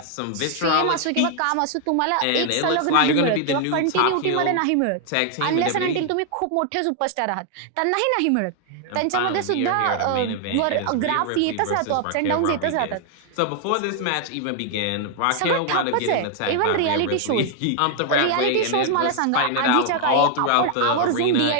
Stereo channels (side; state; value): both; different; correlation 0.00